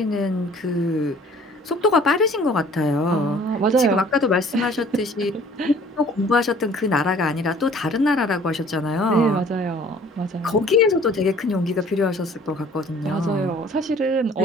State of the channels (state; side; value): normal; both; correlation 0.53